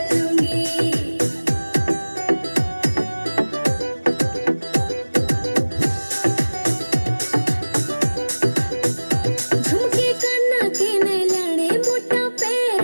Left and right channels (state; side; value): inverted; both; correlation -1.00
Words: झुमके काना के ने लाने मोटा